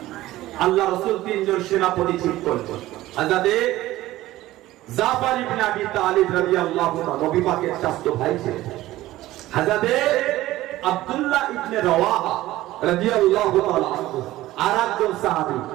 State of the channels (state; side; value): quieter; left; 16.2 dB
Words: আল্লাহ রাসূল 3 জন সেনাপতি ঠিক করলেন। হযরত জাফর ইবনে আবি তালিব রাদিয়াল্লাহু তাআলা নবী পাকের চাচা ভাই ছিলেন। হযরত আব্দুল্লাহ ইবনে রাওয়াহা রাদিয়াল্লাহু তাআলা আরেকজন সাহাবী।